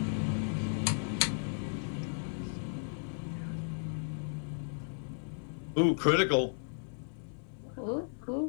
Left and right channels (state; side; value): silent; right; 55 dB below the other